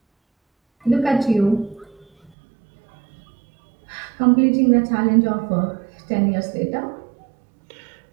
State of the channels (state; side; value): drops out; left; at 2.3 s